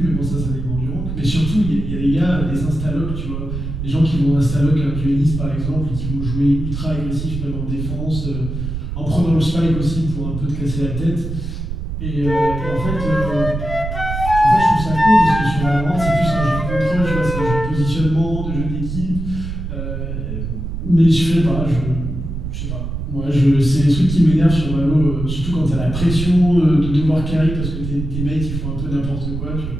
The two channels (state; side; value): noise; right; rumble, 5 dB below the sound